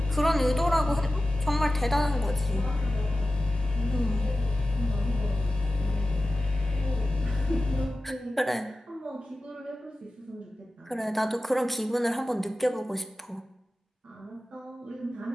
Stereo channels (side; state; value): both; normal; correlation 0.95